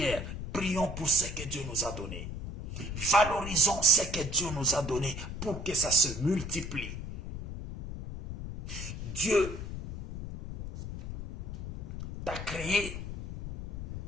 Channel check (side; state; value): left; noise; rumble, 7 dB below the sound